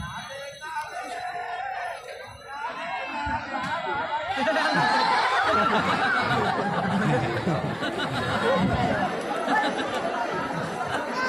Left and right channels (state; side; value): identical; both; correlation 1.00